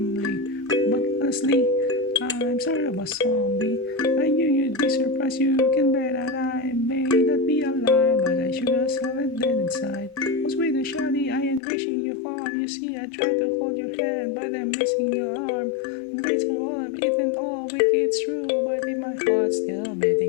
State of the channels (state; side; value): drops out; right; at 11.6 s